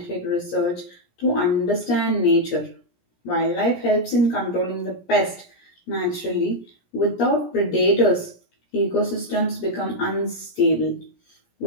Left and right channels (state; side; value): late; right; 17 ms